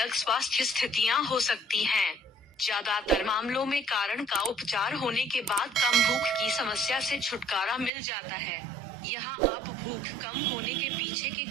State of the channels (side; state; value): left; drops out; at 7.9 s